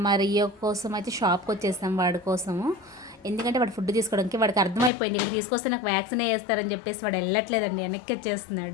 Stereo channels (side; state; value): right; drops out; at 4.9 s